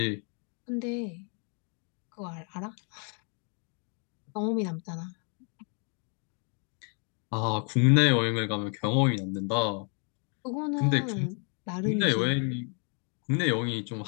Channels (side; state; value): right; quieter; 39.7 dB